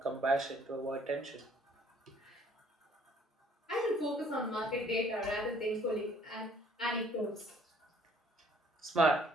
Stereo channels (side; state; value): both; normal; correlation 0.60